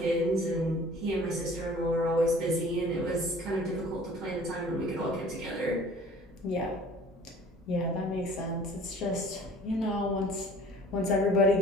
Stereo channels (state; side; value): normal; both; correlation 0.49